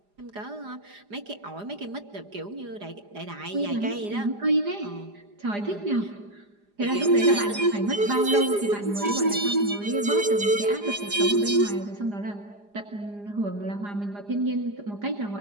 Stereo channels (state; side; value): late; left; 4.9 ms